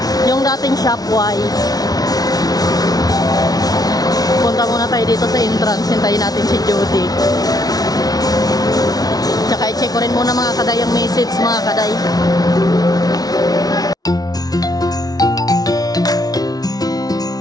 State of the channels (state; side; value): late; right; 0.18 ms